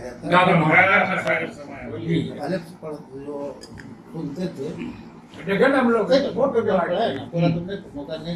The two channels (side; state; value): both; identical; correlation 1.00